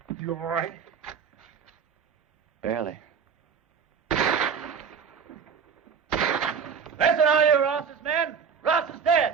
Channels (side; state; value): left; quieter; 6.5 dB